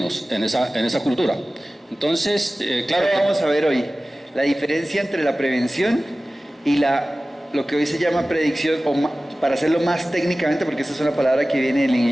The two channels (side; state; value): both; normal; correlation 0.97